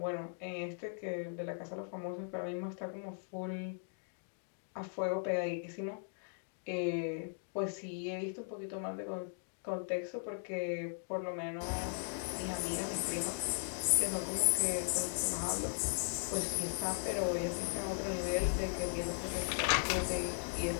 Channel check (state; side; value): silent; right; digital silence